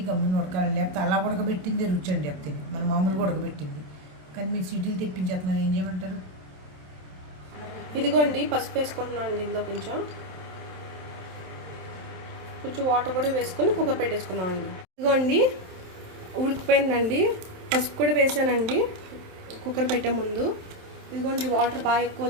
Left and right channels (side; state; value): left; late; 27 ms